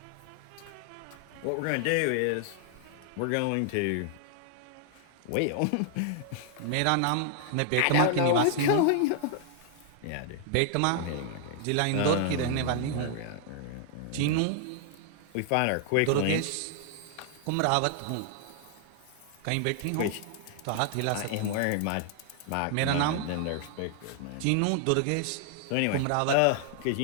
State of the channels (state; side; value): different; both; correlation 0.00